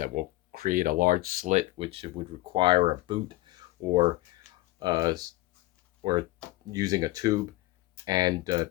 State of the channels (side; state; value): right; quieter; 18.9 dB